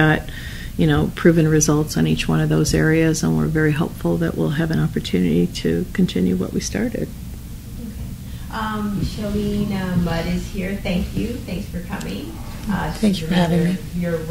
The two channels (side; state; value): both; identical; correlation 1.00